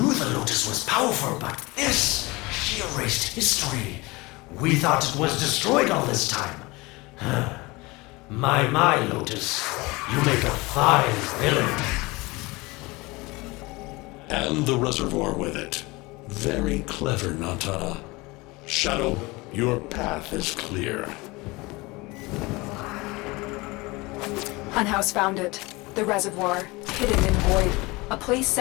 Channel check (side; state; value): right; quieter; 23.5 dB